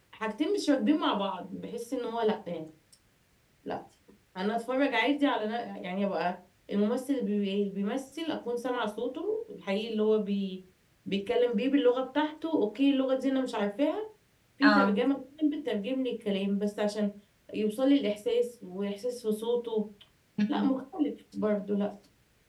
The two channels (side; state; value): both; identical; correlation 1.00